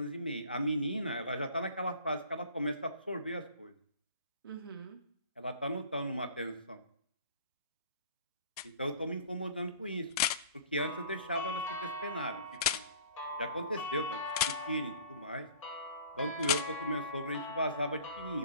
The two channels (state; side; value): inverted; both; correlation -0.47